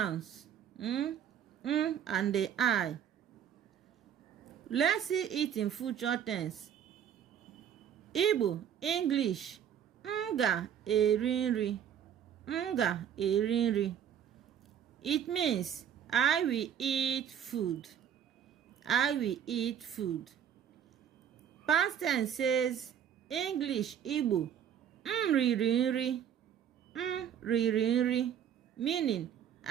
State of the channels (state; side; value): quieter; left; 9.1 dB